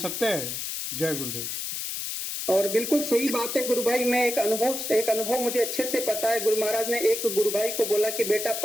है। जय गुरुदेव। और बिल्कुल सही बात है गुरु भाई। मैं एक अनुभव मुझे अच्छे से पता है। गुरु महाराज ने एक गुरु भाई को बोला कि बेटा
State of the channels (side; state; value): left; noise; hiss, 4 dB below the sound